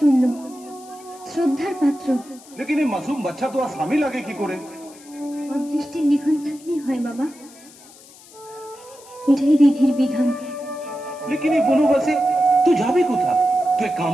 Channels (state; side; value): noise; left; hiss, 22 dB below the sound